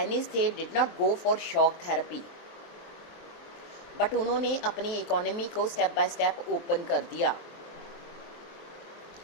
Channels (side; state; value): right; late; 23 ms